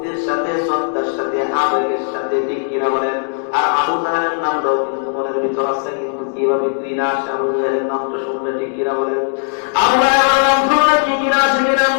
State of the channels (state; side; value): silent; right; digital silence